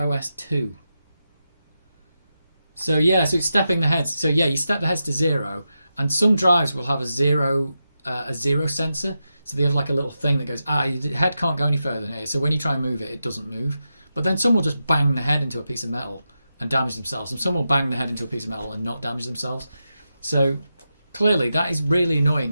2. So yeah, so it's stepping the heads. So yeah, you step the heads to 0, and some drives will have a zero sensor. So they have like a little thing that goes, your head can't go any further than here. So when you try and move it, it doesn't move. But then some will just bang the head into a piece of metal and damage themselves. And some will bang the head into a piece of metal and not damage themselves. So clearly that is really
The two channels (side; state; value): both; inverted; correlation -0.89